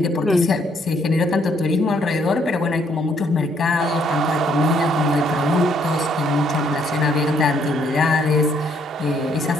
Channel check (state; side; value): normal; both; correlation 0.69